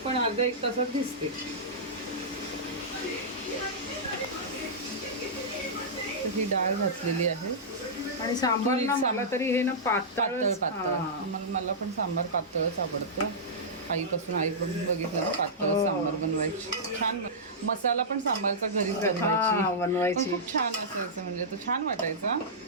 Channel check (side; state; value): both; normal; correlation -0.14